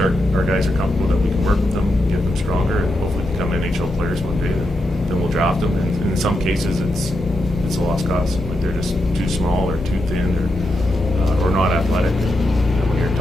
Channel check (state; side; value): normal; both; correlation 0.85